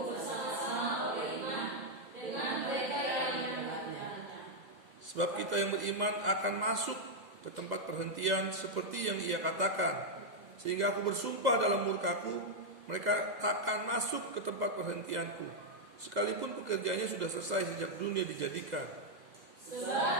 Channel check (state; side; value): late; left; 2.0 ms